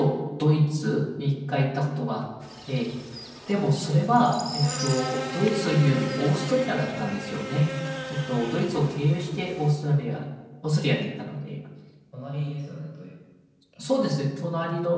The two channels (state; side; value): identical; both; correlation 1.00